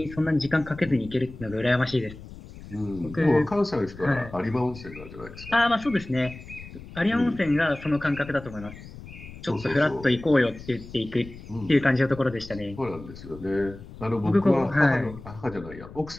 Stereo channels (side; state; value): left; noise; rumble, 15 dB below the sound